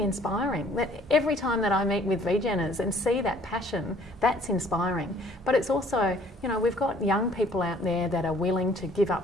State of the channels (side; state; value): both; normal; correlation 0.57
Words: inspiring. That every time that I meet with VGeners and see that passion, that's inspiring. But it's also, we've got young people out there that are willing to give